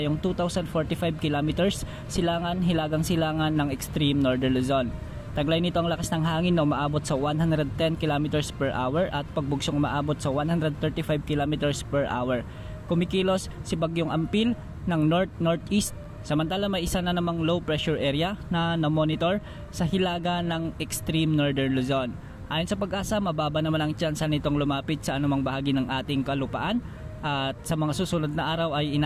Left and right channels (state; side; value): identical; both; correlation 1.00